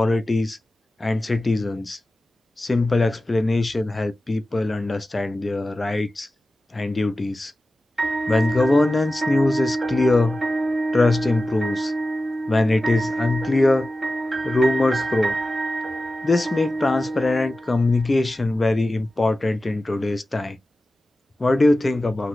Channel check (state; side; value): normal; both; correlation 0.94